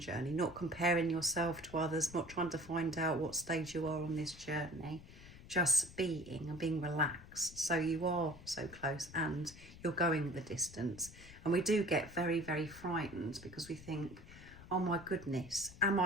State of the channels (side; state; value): left; noise; rumble, 18 dB below the sound